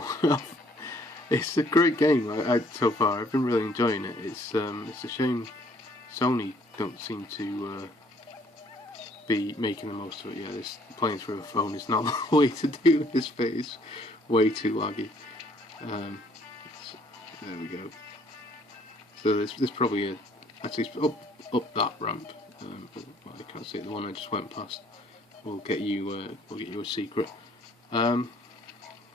off. It's a great game so far. I've been really enjoying it. It's a shame Sony don't seem to be making the most of it. Yeah, this playing through a phone is not the way to do this bit. It's way too laggy. There we go. So there's probably actually up that ramp. Well, I can't see it. The one I just went past will get you a secret. So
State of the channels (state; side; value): normal; both; correlation 0.62